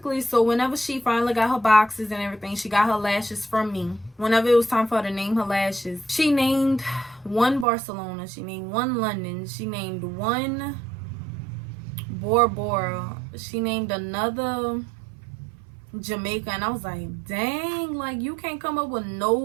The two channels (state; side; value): drops out; left; at 7.7 s